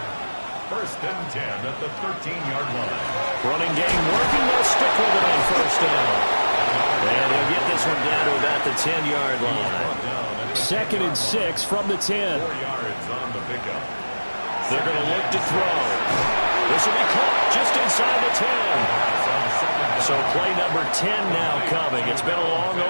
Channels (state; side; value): inverted; both; correlation -1.00